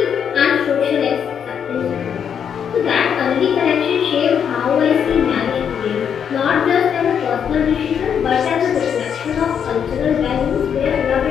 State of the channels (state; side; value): quieter; right; 7.9 dB